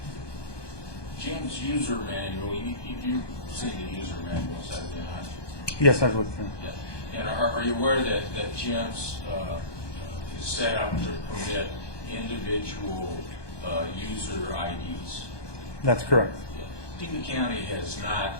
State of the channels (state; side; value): late; right; 1.2 ms